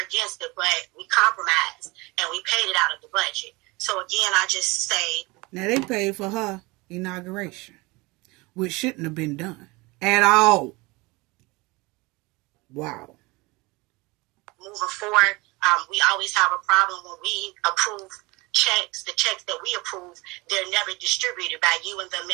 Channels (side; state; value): left; quieter; 24.3 dB